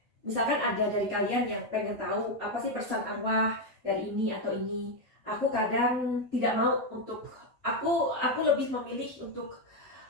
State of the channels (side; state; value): both; normal; correlation 0.05